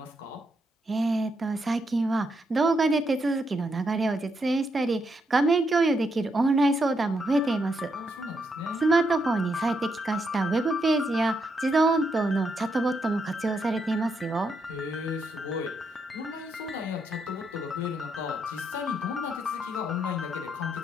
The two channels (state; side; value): normal; both; correlation 0.79